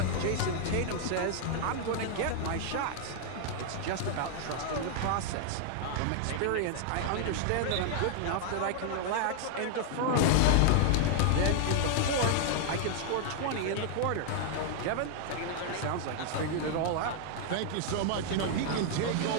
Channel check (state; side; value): different; both; correlation 0.00